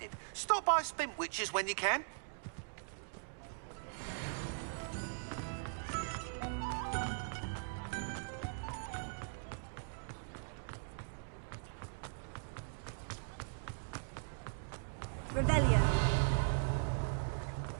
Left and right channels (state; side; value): silent; left; digital silence